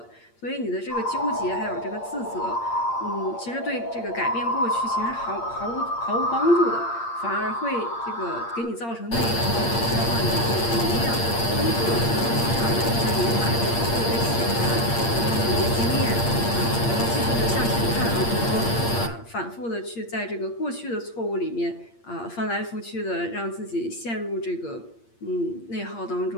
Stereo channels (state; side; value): late; right; 8.6 ms